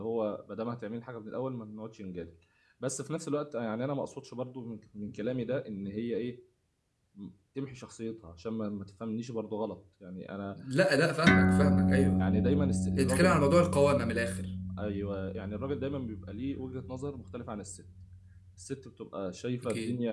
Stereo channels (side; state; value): both; identical; correlation 1.00